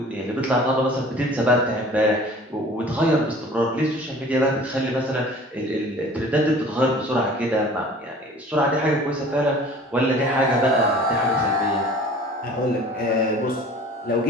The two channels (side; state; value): both; normal; correlation 0.46